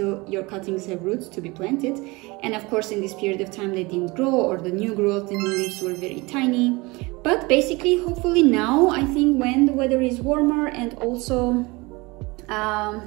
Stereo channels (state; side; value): quieter; left; 24.3 dB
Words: your cuttings have roots to be planted. And of course, in this period of time, they didn't grow, or the new growth, the new leaves were very tiny. But basically, hopefully now, I think when the weather is warmer and also